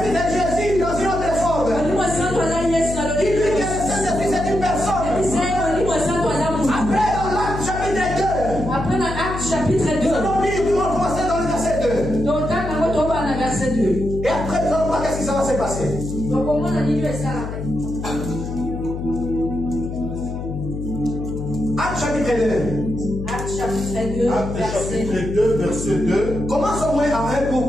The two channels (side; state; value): left; noise; hum, 6 dB below the sound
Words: est Jésus dans une autre forme. Il dit que le Saint-Esprit c'est une personne. Après dans l'acte chapitre 2, nous allons lire, nous allons commencer dans le verset 2. Et après nous allons voir qu'est-ce qui va se passer. Acte chapitre 2, verset 2. Commençons au moins à